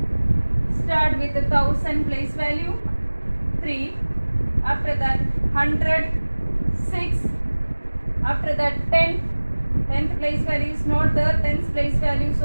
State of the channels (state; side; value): inverted; both; correlation -1.00